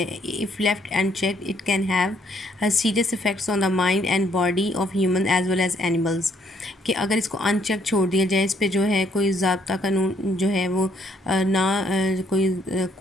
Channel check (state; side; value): normal; both; correlation 0.68